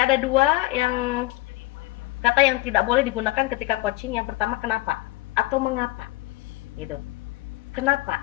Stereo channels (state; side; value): quieter; right; 19.5 dB